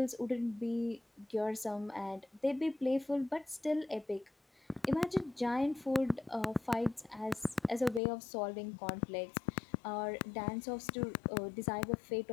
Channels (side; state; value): right; drops out; at 8.0 s